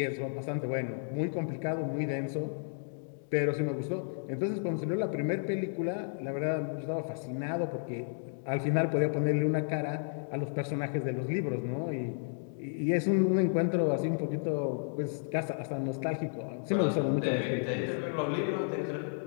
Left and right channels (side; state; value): right; silent; digital silence